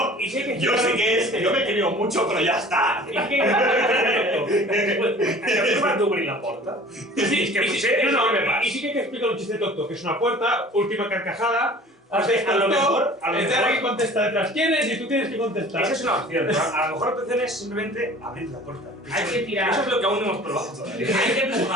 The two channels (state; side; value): normal; both; correlation 0.45